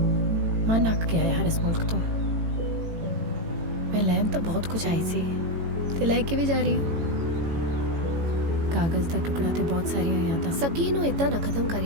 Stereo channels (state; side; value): late; left; 18 ms